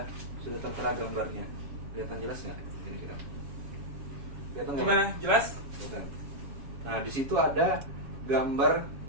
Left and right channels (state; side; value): late; left; 7.3 ms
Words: tertera gambarnya. Kelihatan jelas nggak? Kira-kira. Kelihatan nggak? Gimana? Jelas? Kelihatan. Nah di situ ada gambar